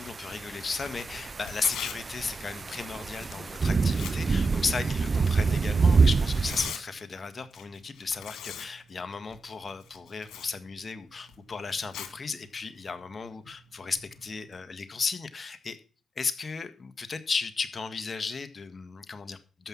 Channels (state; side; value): normal; both; correlation 0.87